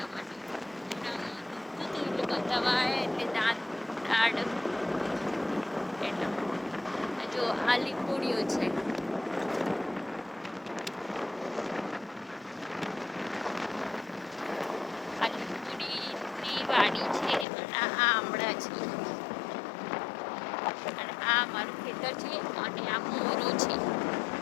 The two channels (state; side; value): drops out; right; at 17.4 s